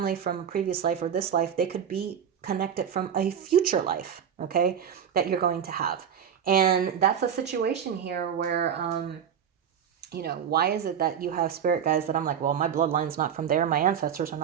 from previous life or this life. They could be connected from a future life, okay, that you're going to have. And that's a situation here where, why is it that you have spirit guides that I'm like, well, my bloodline's not from there, my ancestors are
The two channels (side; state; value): left; quieter; 8.3 dB